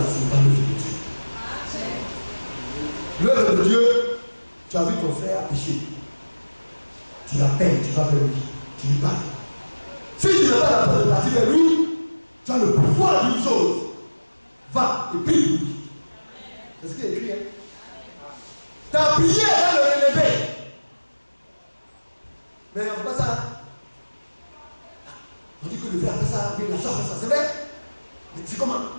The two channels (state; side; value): inverted; both; correlation -1.00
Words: c'est pas l'œuvre de Dieu. L'œuvre de Dieu, tu as vu ton frère pécher. Tu l'appelles, tu vas vers lui, tu lui parles. Si tu n'as pas la force de partir vers lui, tu as le pouvoir d'une chose. Va et prie lui. C'est ce qu'il est écrit. Hein? Ta prière va le relever. Mais on ne fait pas ça. On dit que le frère fait ça, mais la soeur fait ça. C'est vrai? Mais c'est comment?